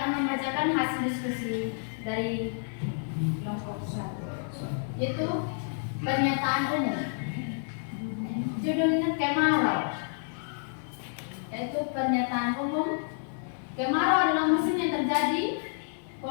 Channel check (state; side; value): silent; right; 58 dB below the other